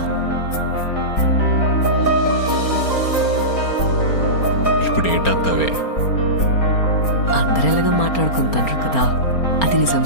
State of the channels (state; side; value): late; right; 4.3 ms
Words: ఇప్పుడు ఏటత్తవే? అందరు ఎలాగ మాట్లాడుకుంటారు కదా, అది నిజం